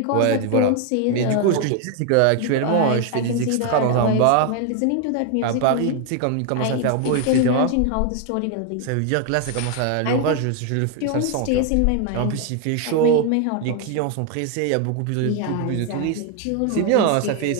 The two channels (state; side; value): different; both; correlation 0.01